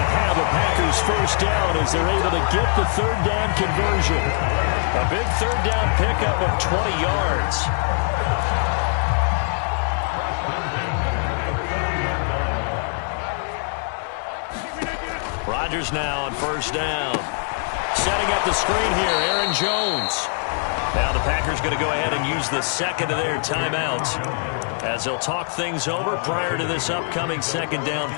to have a Packers first down as they're able to get the 3rd down conversion. A big 3rd down pickup of 20 yards. Rodgers now on first down. Setting up the screen here, Aaron Jones. Now the Packers going to go ahead and use the 2nd of their timeouts as they'll talk things over prior to this upcoming 2nd down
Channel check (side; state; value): right; silent; 58 dB below the other